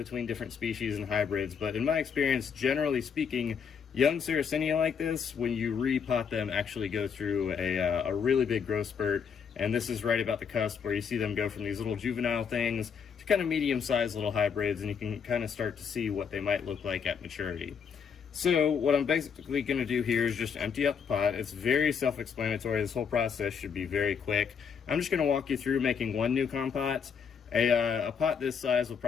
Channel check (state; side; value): quieter; right; 6.7 dB